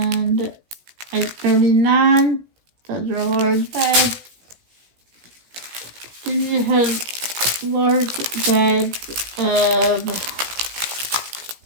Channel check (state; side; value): late; left; 17 ms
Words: 839. Those are large bags. Then you have large bags of